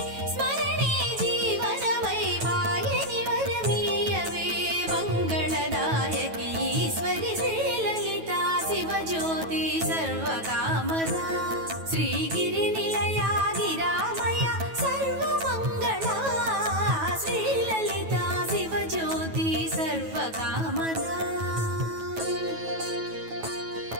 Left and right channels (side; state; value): left; late; 9.2 ms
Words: స్మరణే జీవనమై వాయని వరమీయవే మంగళదాయకి ఈశ్వరి శ్రీలలితా శివజ్యోతి సర్వకామదా శ్రీగిరినిలయా గిరామయ సర్వమంగళా శ్రీలలితా శివజ్యోతి సర్వకామదా